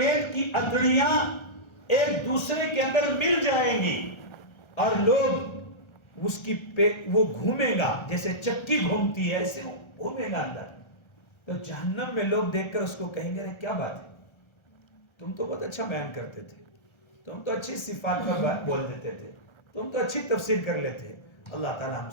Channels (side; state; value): right; late; 1.3 ms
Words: کی اتڑیاں ایک دوسرے کے اندر مل جائیں گی اور لوگ اس کی وہ گھومے گا جیسے چکی گھومتی ہے، ایسے وہ گھومے گا اندر. تو جہنم میں لوگ دیکھ کر اس کو کہیں گے کیا بات ہے، تم تو بہت اچھا بیان کرتے تھے، تم تو اچھی صفات پر بات بول دیتے تھے، تم تو اچھی تفسیر کر لیتے. اللہ تعالی ہم